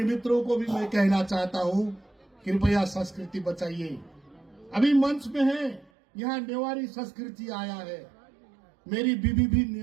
मित्रों को भी मैं कहना चाहता हूं, कृपया संस्कृति बचाइए। अभी मंच में है, यहाँ नेवारी संस्कृति आया है। मेरी बीबी भी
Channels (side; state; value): left; drops out; at 5.9 s